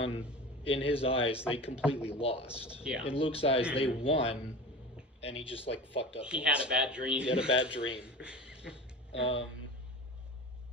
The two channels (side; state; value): both; normal; correlation 0.33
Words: in his eyes, they completely lost. Yeah. In Luke's eyes, they won, and he just, fucked up. He had a bad dream. He had a bad dream. God.